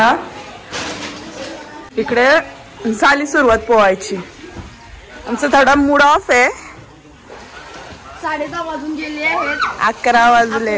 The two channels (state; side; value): identical; both; correlation 1.00